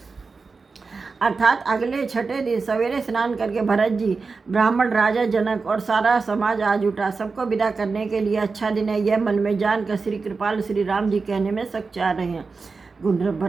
अर्थात अगले छठे दिन सवेरे स्नान करके भरत जी, ब्राह्मण राजा जनक और सारा समाज आज उठा। सबको विदा करने के लिए अच्छा दिन है यह मन में जानकर श्री कृपाल श्री राम जी कहने में सकुचा रहे हैं। गुंड्र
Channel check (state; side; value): quieter; left; 4.4 dB